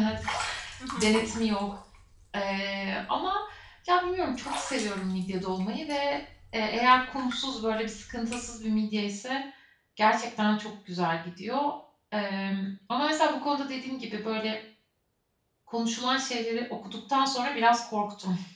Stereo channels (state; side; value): identical; both; correlation 1.00